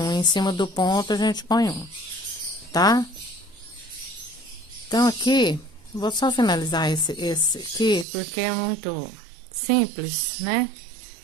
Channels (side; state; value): left; drops out; at 8.1 s